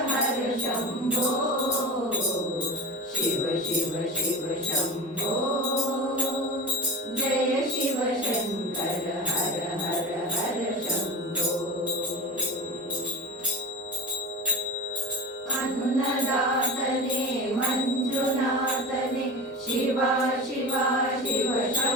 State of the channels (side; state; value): both; normal; correlation 0.30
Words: ಹರ ಶಂಭೋ. ಶಿವ ಶಿವ ಶಿವ ಶಂಭೋ ಜಯ ಶಿವ ಶಂಕರ ಹರ ಹರ ಹರ ಶಂಭೋ. ಅನ್ನದಾತನೇ ಮಂಜುನಾಥನೇ ಶಿವ ಶಿವ ಶಿವ